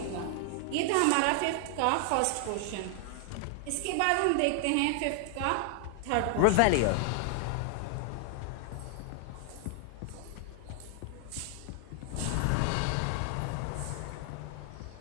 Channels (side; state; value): both; different; correlation 0.00